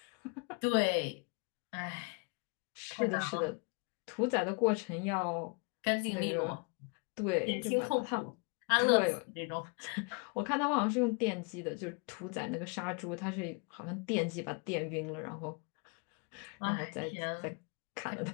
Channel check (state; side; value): quieter; right; 33.5 dB